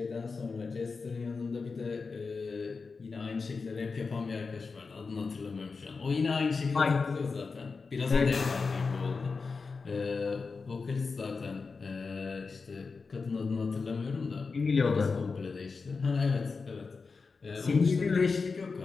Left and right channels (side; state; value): right; quieter; 4.6 dB